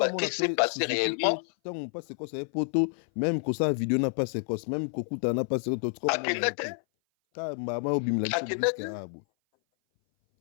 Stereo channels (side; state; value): right; silent; 57 dB below the other